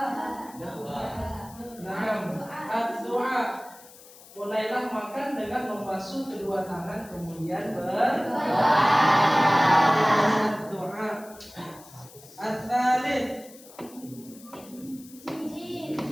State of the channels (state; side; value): noise; left; hiss, 21 dB below the sound